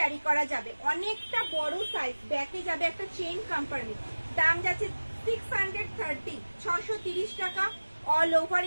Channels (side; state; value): both; inverted; correlation -1.00